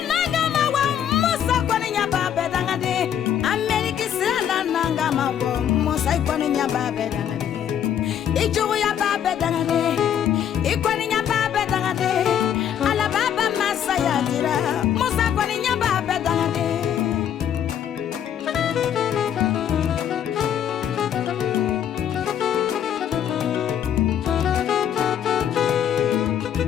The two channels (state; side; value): quieter; right; 9.5 dB